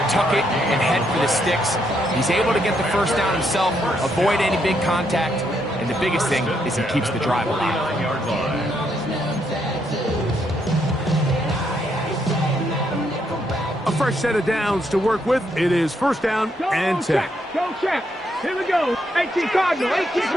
Tuck it and head for the sticks. He's able to get the first down himself, avoid any big contact, and the biggest thing is he keeps the drive alive. A fresh set of downs to work with. It is first down and 10. Go check. Here we go. 18 Cardinal. 18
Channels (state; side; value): normal; both; correlation 0.76